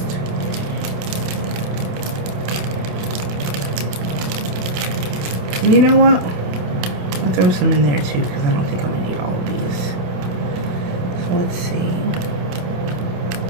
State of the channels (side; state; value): left; late; 28 ms